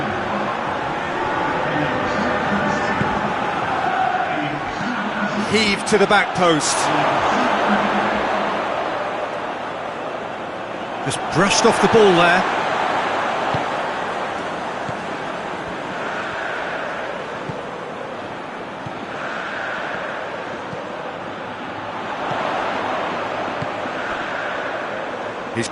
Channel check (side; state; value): both; identical; correlation 1.00